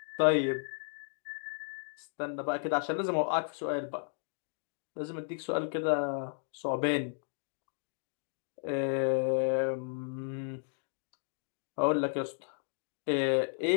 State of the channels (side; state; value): right; silent; digital silence